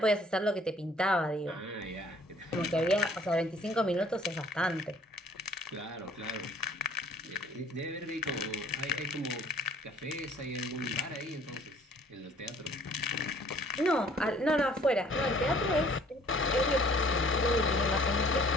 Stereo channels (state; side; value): normal; both; correlation 0.56